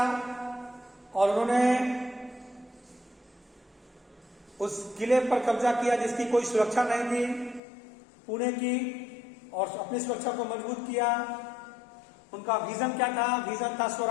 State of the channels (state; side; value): drops out; right; at 7.6 s